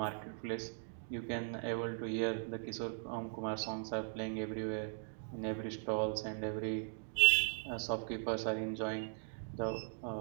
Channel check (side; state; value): left; silent; digital silence